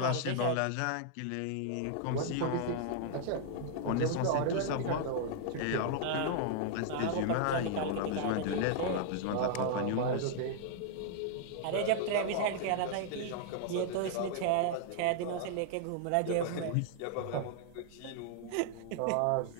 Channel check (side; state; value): both; different; correlation 0.00